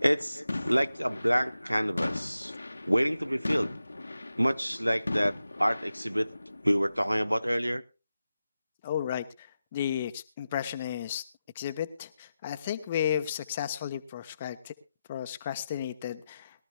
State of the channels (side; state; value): both; inverted; correlation -0.91